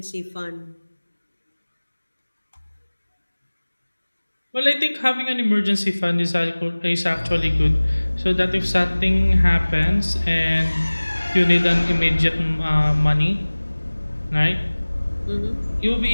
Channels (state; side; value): inverted; both; correlation -1.00